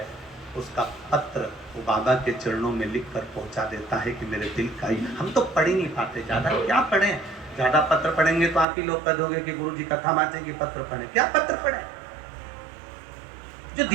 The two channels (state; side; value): drops out; left; at 8.7 s